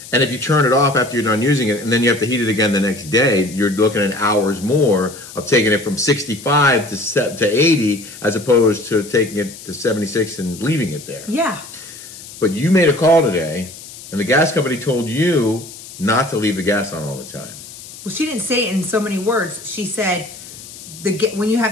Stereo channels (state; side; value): noise; left; hiss, 16 dB below the sound